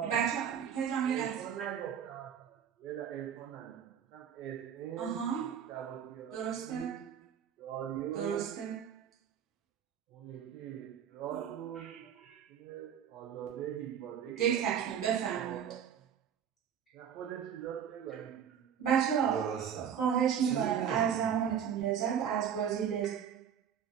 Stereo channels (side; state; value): left; quieter; 8.4 dB